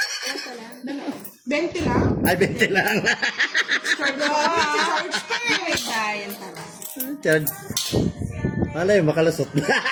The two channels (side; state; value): both; identical; correlation 1.00